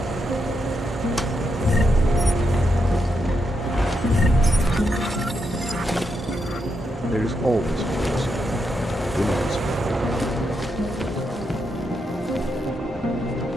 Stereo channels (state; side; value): normal; both; correlation 0.83